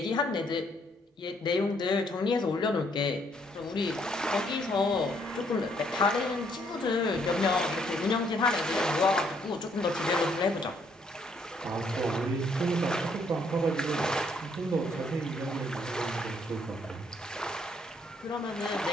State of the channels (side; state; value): both; normal; correlation 0.69